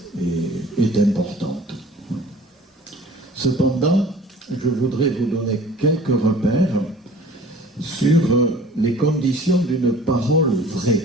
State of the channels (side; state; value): both; normal; correlation 0.47